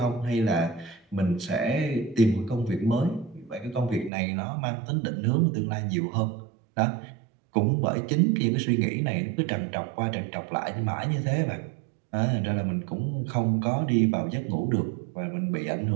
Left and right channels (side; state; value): left; drops out; at 4.1 s